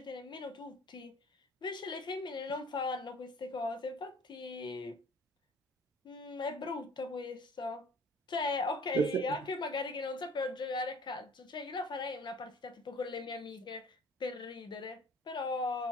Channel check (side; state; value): both; normal; correlation 0.49